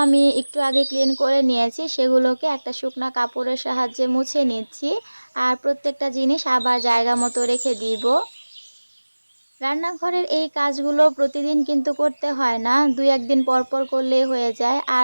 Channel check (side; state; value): both; inverted; correlation -1.00